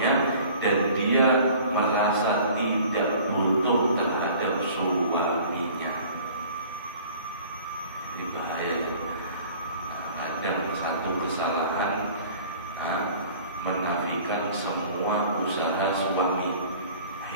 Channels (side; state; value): both; inverted; correlation -0.48